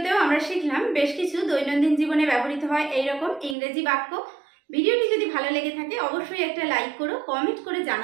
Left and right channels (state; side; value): drops out; left; at 3.6 s